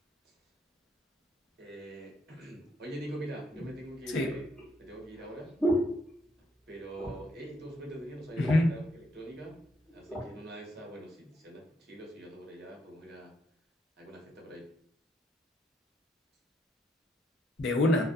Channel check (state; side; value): normal; both; correlation 0.73